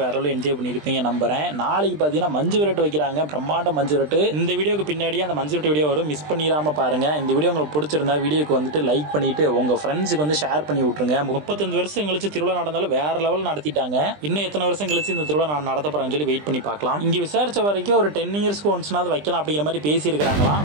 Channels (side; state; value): left; late; 20 ms